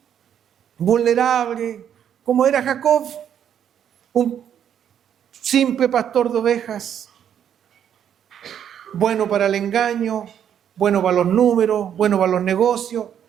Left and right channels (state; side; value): quieter; left; 9.2 dB